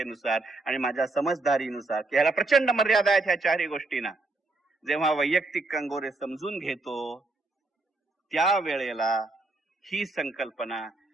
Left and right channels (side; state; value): left; quieter; 3.2 dB